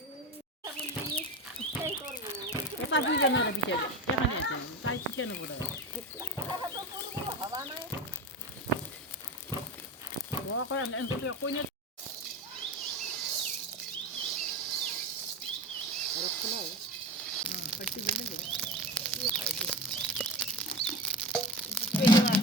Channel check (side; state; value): both; normal; correlation 0.26